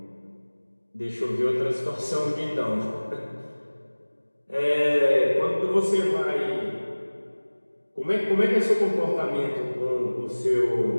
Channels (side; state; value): both; inverted; correlation -1.00